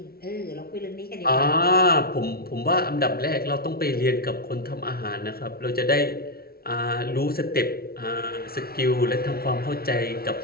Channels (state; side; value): late; right; 0.44 ms